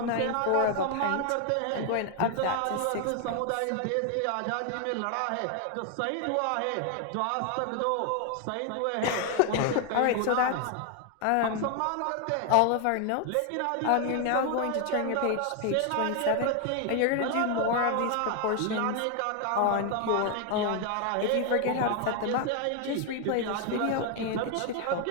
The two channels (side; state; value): both; different; correlation 0.00